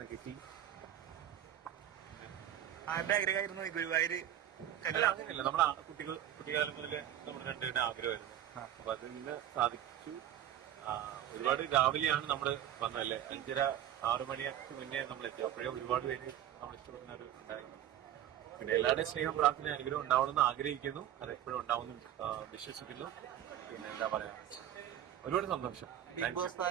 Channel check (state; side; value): quieter; left; 11.6 dB